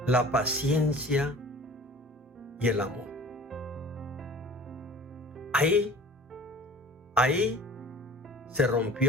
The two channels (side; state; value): both; normal; correlation 0.45